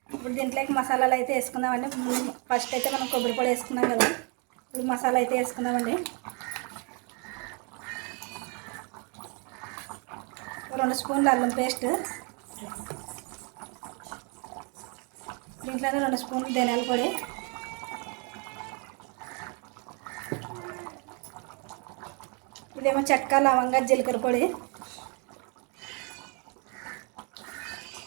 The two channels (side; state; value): left; quieter; 34.0 dB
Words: ఇప్పుడు దీంట్లోకి మసాలాలు అయితే వేసుకుందామండి. ఫస్ట్ అయితే మనం కొబ్బరి పొడి వేసుకున్నాం కదా, ఇప్పుడు మసాలా అయితే వేసుకుందామండి. 2 స్పూన్లు అల్లం పేస్ట్, దీంట్లోనే 2 స్పూన్లు ధనియాల పొడి, ఇదేమో చెక్క లవంగా జీలకర్ర పొడి,